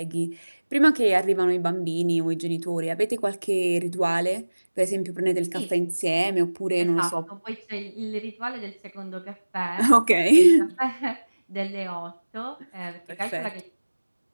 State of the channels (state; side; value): inverted; both; correlation -1.00